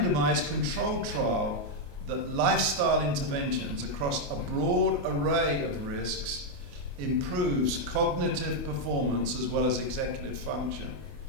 controlled trial that lifestyle interventions across a broad array of risks improves cognitive performance as well as executive function.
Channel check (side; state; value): left; late; 28 ms